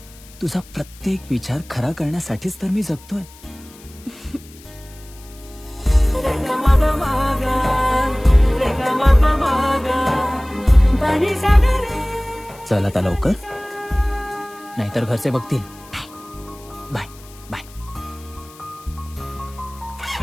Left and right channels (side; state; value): left; noise; hiss, 23 dB below the sound